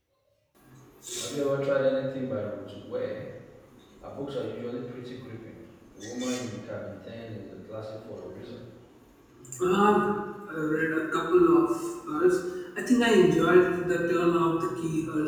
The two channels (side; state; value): both; identical; correlation 1.00